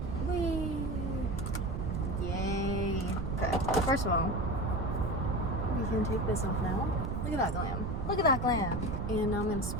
Whee! Yay. Okay, first of all, we can take this off now. Look at that glam. Look at that glam. And now I'm gonna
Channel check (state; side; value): noise; right; rumble, 2 dB below the sound